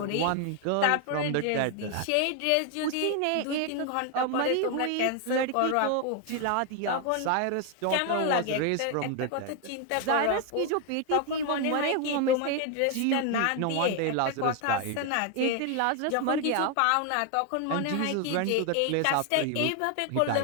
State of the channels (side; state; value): both; different; correlation 0.01